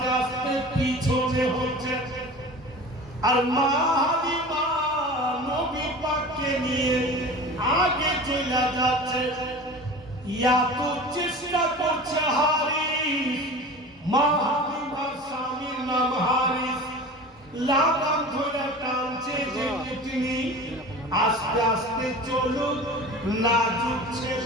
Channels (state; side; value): normal; both; correlation 0.36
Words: আস্তে পিছনে হচ্ছে আর মা হালিমা নবী পাককে নিয়ে আগে চলে যাচ্ছে ইয়া তো চেষ্টা করছে হারিস মা হালিমার স্বামীর নাম হারিস লাগাম ধরে টানছে যে তিনি আস্তে আস্তে চলুন নাজুক